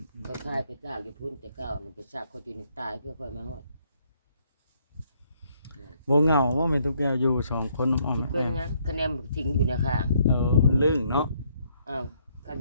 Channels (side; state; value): both; inverted; correlation -0.69